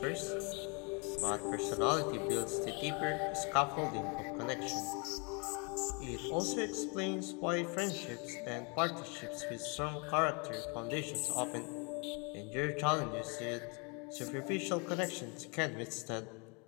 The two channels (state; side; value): quieter; right; 33.2 dB